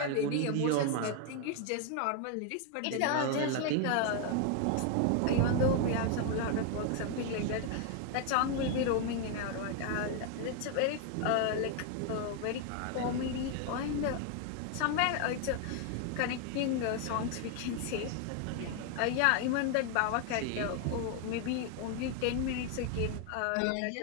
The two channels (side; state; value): both; different; correlation 0.01